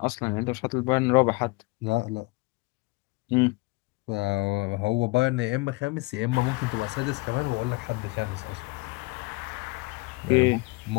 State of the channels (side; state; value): right; quieter; 25.0 dB